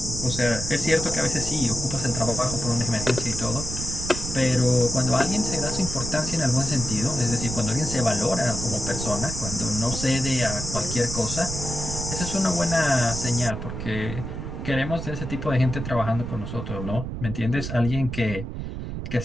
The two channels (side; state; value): right; noise; rumble, 6 dB below the sound